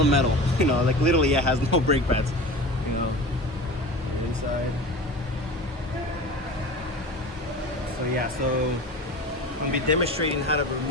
metal, you know, like literally it has no brake pads, you know, inside. So yeah, so I'm gonna be demonstrating how to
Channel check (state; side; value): normal; both; correlation 0.34